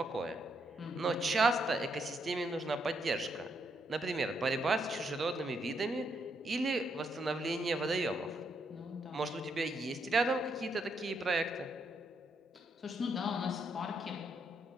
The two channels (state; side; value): normal; both; correlation 0.77